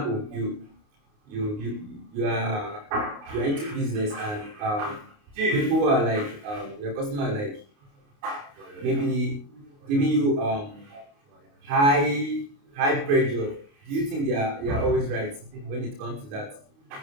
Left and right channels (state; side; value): late; left; 29 ms